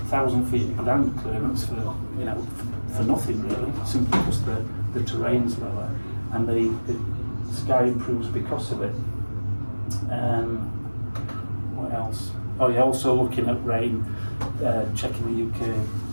feet of ground clearance for nothing really, simply because the terrain's lower and the sky improves because of it. What else? Oh yeah, also looking at rain, checking the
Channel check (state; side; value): inverted; both; correlation -1.00